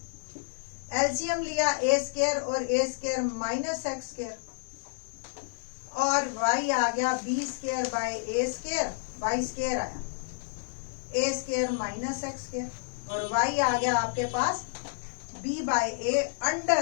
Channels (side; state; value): right; silent; digital silence